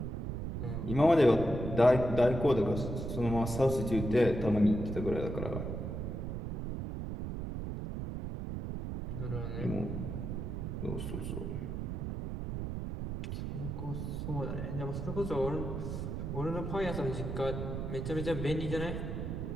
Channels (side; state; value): right; noise; rumble, 4 dB below the sound